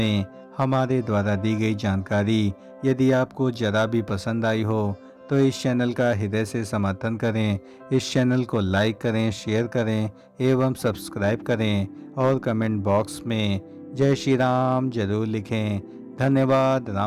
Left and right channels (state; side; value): identical; both; correlation 1.00